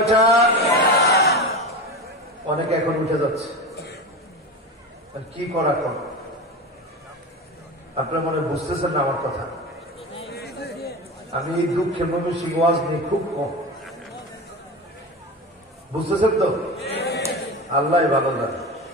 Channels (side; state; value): both; normal; correlation 0.26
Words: অনেকে এখন উঠে যাচ্ছে, কি করা কর? আপনার মনে বুঝতেছেন না আমার কথা? আমি এই দুঃখের ময়মনসিংহ ওয়াজ নিয়ে খুব কম, বুঝতেছেন তো? আল্লাহ ভালো জানে।